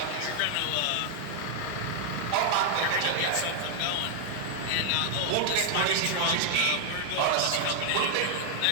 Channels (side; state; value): both; different; correlation 0.00